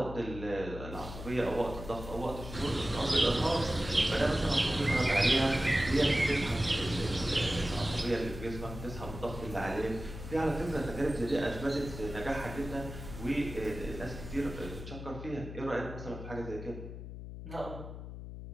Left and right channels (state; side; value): noise; left; hum, 10 dB below the sound